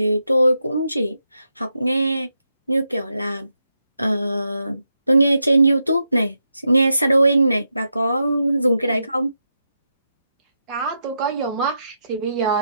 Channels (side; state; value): both; inverted; correlation -0.85